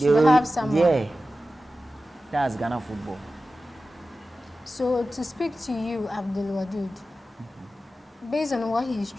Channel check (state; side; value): normal; both; correlation 0.94